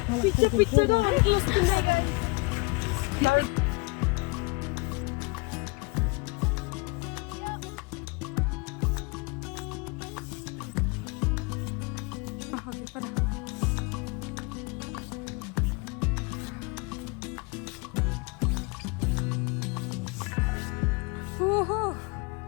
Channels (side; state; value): right; quieter; 27.5 dB